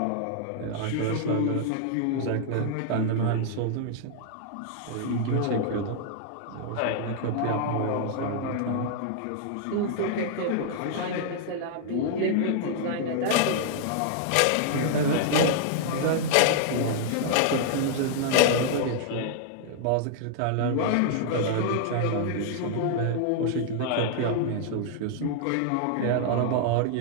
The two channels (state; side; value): different; both; correlation -0.01